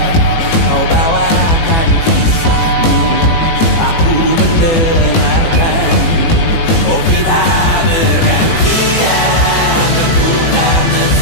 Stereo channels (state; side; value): late; right; 18 ms